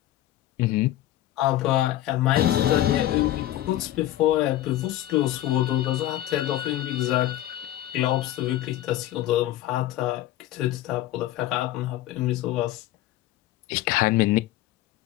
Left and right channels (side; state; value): right; quieter; 13.9 dB